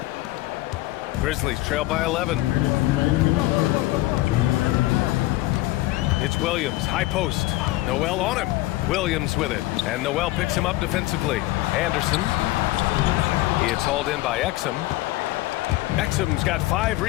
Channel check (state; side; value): quieter; right; 18.0 dB